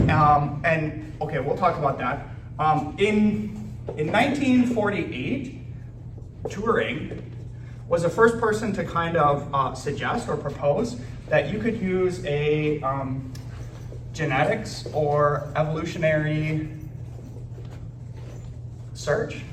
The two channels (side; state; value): both; identical; correlation 1.00